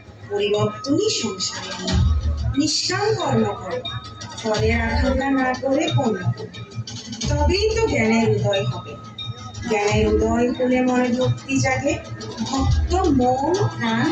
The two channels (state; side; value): identical; both; correlation 1.00